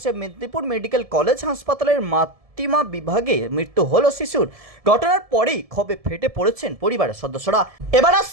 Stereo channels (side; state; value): left; late; 1.7 ms